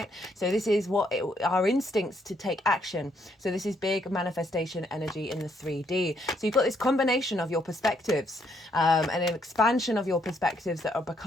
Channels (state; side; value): normal; both; correlation 0.72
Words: So this is our instincts to take action. So this is big manifestation energy in the 3D. So you've got this combination of your perspectives, and an expansion of your perspectives that are